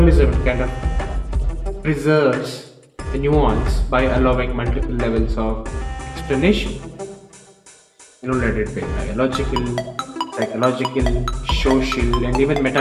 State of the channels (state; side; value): identical; both; correlation 1.00